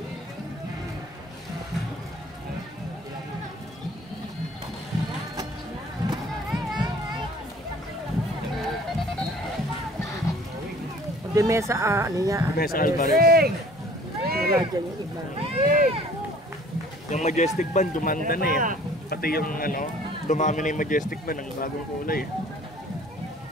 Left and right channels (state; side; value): normal; both; correlation 0.52